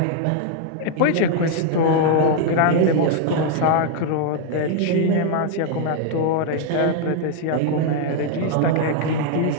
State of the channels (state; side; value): different; both; correlation 0.00